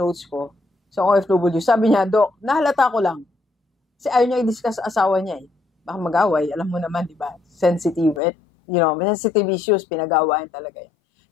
ko sa OFW. Sabi niya, Dok, nahalata ko lang. Kasi ayaw niya i-discuss sa asawa niya eh. Baka mag-away, alam mo naman, di ba? Sensitive, sensitive issues, pinag-awayan talaga yan.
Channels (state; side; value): drops out; right; at 8.2 s